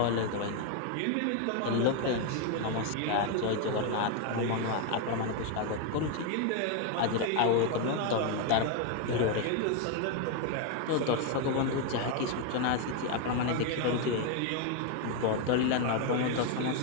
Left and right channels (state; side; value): different; both; correlation 0.01